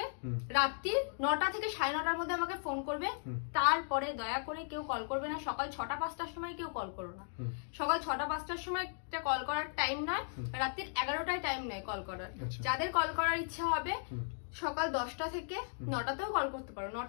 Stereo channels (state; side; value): silent; right; digital silence